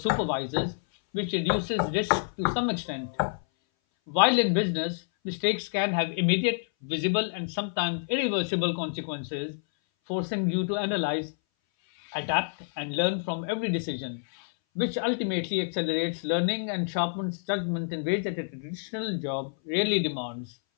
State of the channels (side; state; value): right; silent; 58 dB below the other